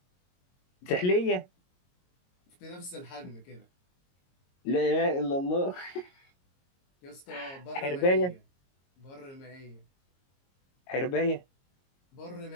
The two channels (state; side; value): late; right; 22 ms